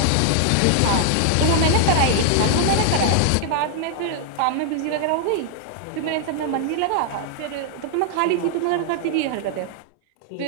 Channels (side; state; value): both; different; correlation -0.01